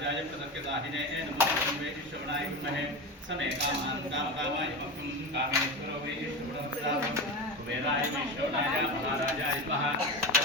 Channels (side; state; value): both; normal; correlation 0.23